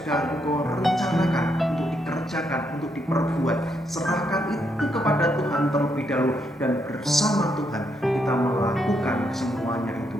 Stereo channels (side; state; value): both; normal; correlation 0.77